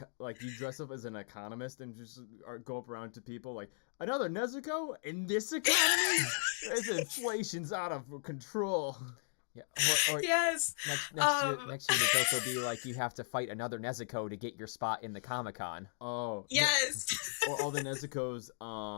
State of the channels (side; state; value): right; silent; digital silence